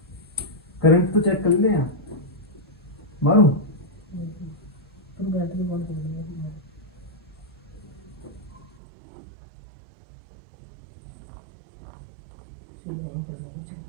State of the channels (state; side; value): drops out; left; at 8.8 s